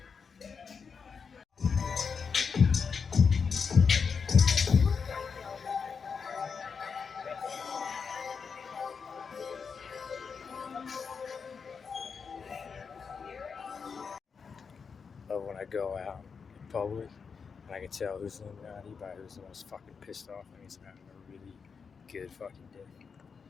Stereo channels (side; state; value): right; quieter; 5.8 dB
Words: But when I go out in public and I can tell who's Illuminati by who's the most fucking pissed off, and he's having a really good fucking day.